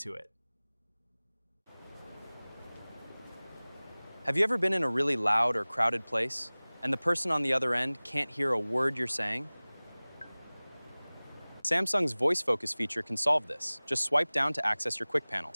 it. Have you ever been in a really loud or crowded place, and the person on the other end can't hear a word you're saying? Samsung's voice focus feature can solve this. Just swipe down to access your quick panel.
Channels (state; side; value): inverted; both; correlation -1.00